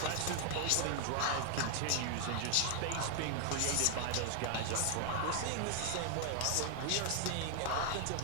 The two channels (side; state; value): both; different; correlation 0.00